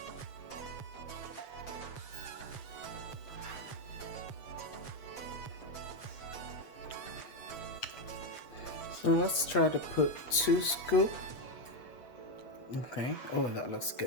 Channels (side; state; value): right; late; 7.6 ms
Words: So let's try to put 2 scoops. Okay. Oh, that looks